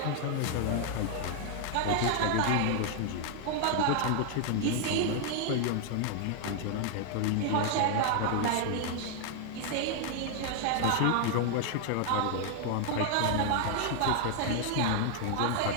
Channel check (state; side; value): different; both; correlation 0.00